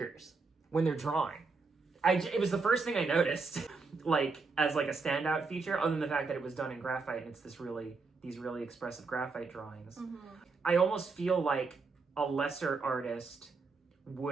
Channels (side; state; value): left; quieter; 4.3 dB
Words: when they're drawing. It was the first thing I noticed, like as like a standout feature, other than the fact that it was done in graphite and it's these really expressive graphite drawings. I almost feel like a lesser artist